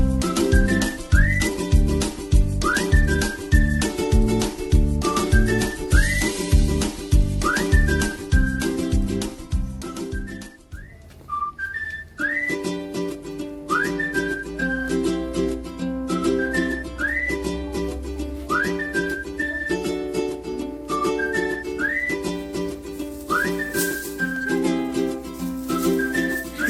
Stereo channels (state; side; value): identical; both; correlation 1.00